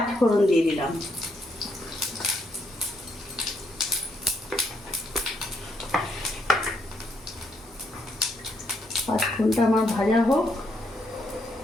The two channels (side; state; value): both; normal; correlation 0.76